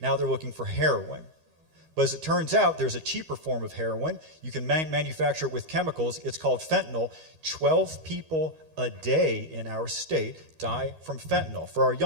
Now they're looking for heroin. But as it turns out, there's a cheaper form of heroin. You can manufacture it with chemicals. It's called fentanyl. 12 people a day in our state die from fentanyl. For our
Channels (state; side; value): late; left; 13 ms